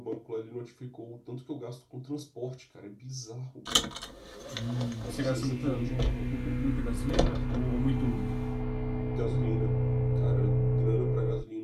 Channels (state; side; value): identical; both; correlation 1.00